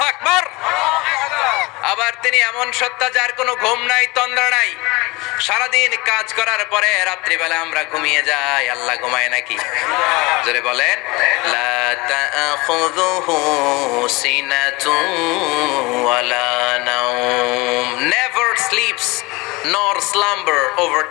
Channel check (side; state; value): right; quieter; 23.8 dB